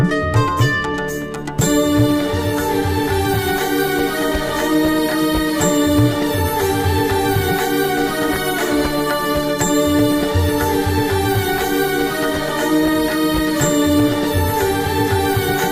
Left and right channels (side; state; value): both; identical; correlation 1.00